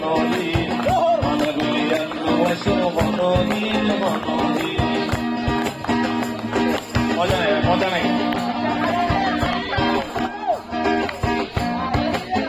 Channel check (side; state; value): both; identical; correlation 1.00